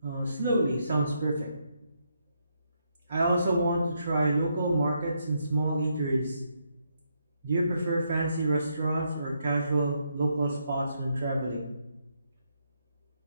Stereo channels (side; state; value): both; inverted; correlation -0.78